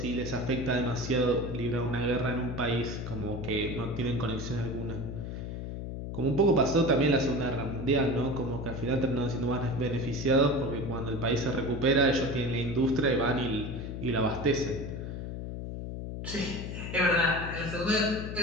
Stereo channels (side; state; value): left; noise; hum, 6 dB below the sound